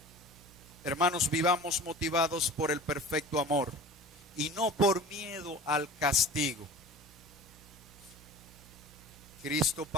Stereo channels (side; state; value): both; normal; correlation 0.39